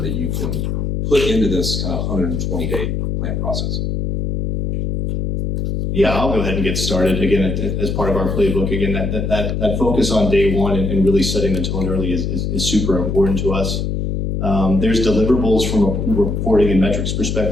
that you can put into this kind of 120-day plan process? Yeah, I'll go ahead and get started again as part of our playbook. Again, that focus on day one and really setting the tone early is super important to us. There's deliverables from a reporting and metrics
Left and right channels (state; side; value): noise; left; hum, 1 dB below the sound